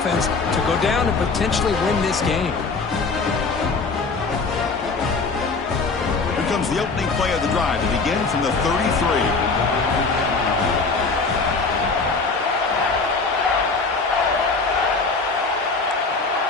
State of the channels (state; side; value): quieter; right; 4.2 dB